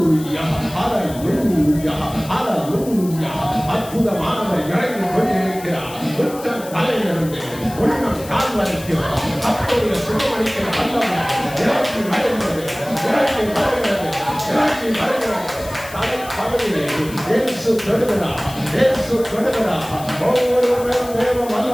ஹல்லேலூயா, ஹல்லேலூயா. அற்புதமானவர் இறங்கி கொண்டிருக்கிறார். உச்சம் தலையிலிருந்து உள்ளம் கால் வரைக்கும் அப்போதைய சுகமளிக்கிற வல்லமை இறங்கி வருகிறது, இறங்கி வருகிறது, இறங்கி வருகிறது. தலை பகுதியிலே இயேசு தொடுகிறார், இயேசு தொடுகிறார். ஒவ்வொருவரும் தேவ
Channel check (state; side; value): noise; left; hiss, 16 dB below the sound